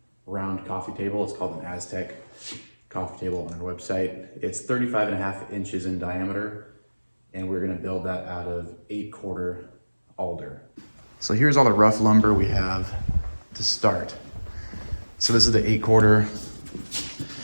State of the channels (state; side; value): inverted; both; correlation -1.00